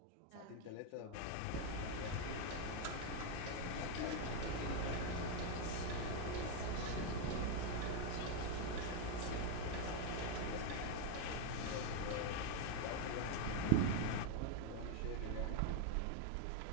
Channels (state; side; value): different; both; correlation 0.01